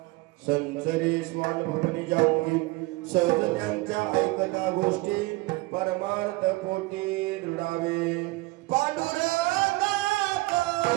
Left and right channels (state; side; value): quieter; left; 22.2 dB